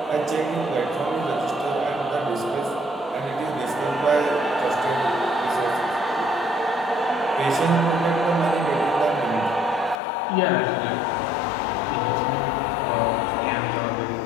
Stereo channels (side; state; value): right; drops out; at 10.0 s